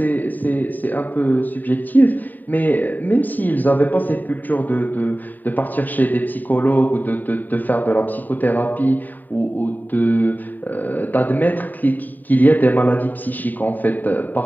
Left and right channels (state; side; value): late; right; 0.087 ms